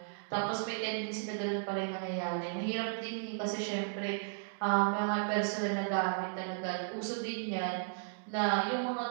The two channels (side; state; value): left; silent; digital silence